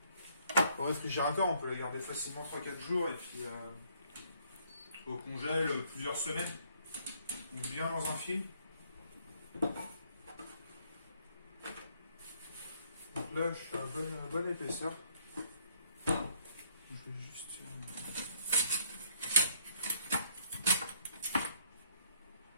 au réfrigérateur, on peut le garder facilement 3-4 jours, et puis au congèle plusieurs semaines. Donc bien dans un film. Donc là, je fais une bonne épaisseur. Je vais juste...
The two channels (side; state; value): both; inverted; correlation -0.65